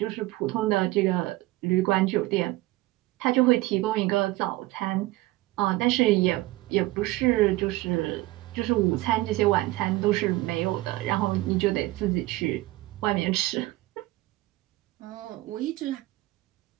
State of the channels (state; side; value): quieter; left; 18.7 dB